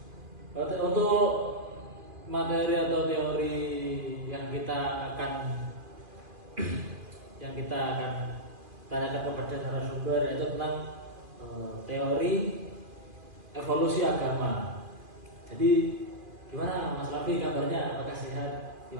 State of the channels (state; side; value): late; left; 2.4 ms